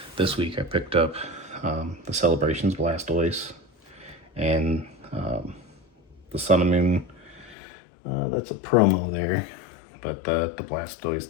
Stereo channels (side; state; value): right; drops out; at 7.6 s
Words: this week I picked up the Celebrations Blastoise and the Sun and Moon. That's a promo there, but the Blastoise